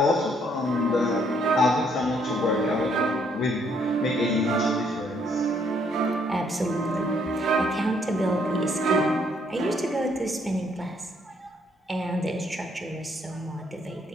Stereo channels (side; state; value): both; normal; correlation 0.69